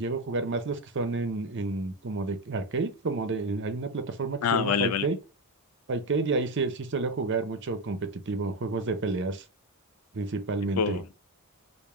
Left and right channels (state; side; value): normal; both; correlation 0.12